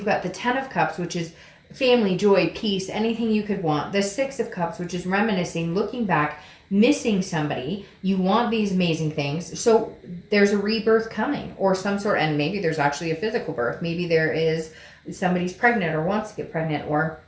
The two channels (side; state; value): both; identical; correlation 1.00